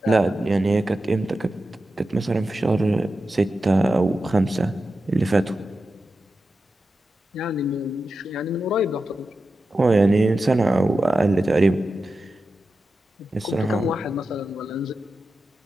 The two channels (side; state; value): both; normal; correlation 0.92